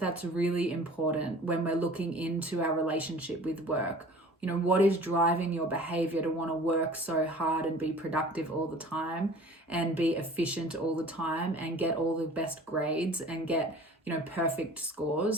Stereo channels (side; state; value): both; normal; correlation 0.45